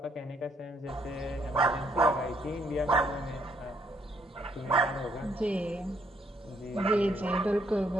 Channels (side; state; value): both; normal; correlation 0.70